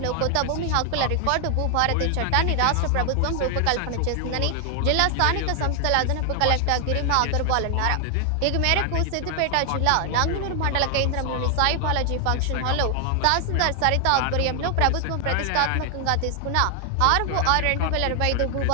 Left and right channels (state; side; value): different; both; correlation 0.00